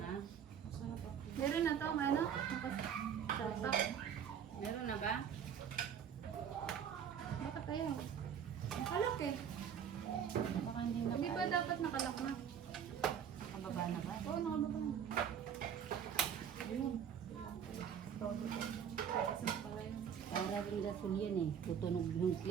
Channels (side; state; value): left; quieter; 8.2 dB